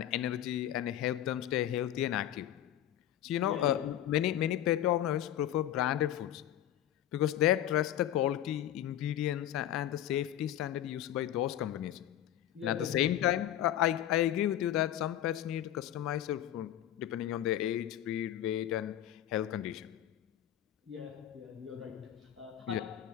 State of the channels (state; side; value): quieter; right; 12.0 dB